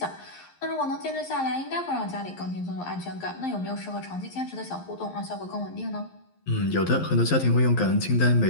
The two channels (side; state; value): right; late; 11 ms